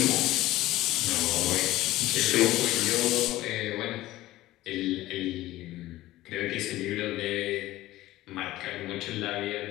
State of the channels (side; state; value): right; quieter; 16.4 dB